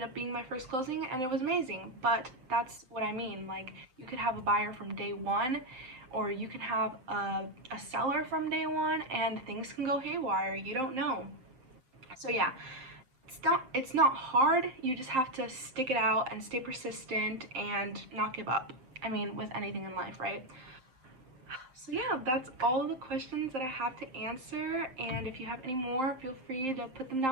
up being my first closing and it was amazing. But that's what I mean. Like, you could have a buyer from day one, or you can have a seller from day one, and things can go haywire. You don't know. So yeah, it's not hard. You just have to stick it out and stay persistent and not give up. I mean, with anything in life, right? So yeah, that's all the questions that I have to answer, and if you have any more, feel free to put them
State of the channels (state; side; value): late; left; 7.6 ms